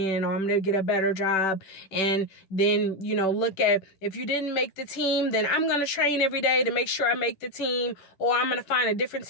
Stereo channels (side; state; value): right; late; 10 ms